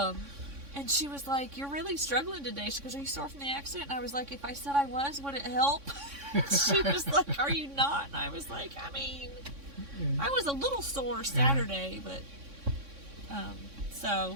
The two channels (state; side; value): late; left; 3.6 ms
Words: And she was like, you're really struggling today. She goes, are you sore from the accident? And I was like, if I said I was, would it help? She was like, are you not? And I was like, I mean, I was a little sore Saturday, but,